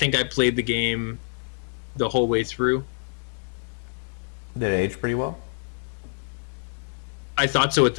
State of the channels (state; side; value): silent; right; digital silence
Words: I played the game the whole way through. Did it age pretty well? I thought so at